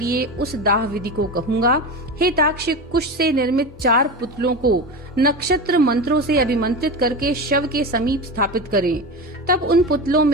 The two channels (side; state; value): both; normal; correlation 0.24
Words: उस दाह विधि को कहूँगा। हे ताक्ष, कुश से निर्मित 4 पुतलों को नक्षत्र मंत्रों से अभिमंत्रित करके शव के समीप स्थापित करें। तब उन पुतलों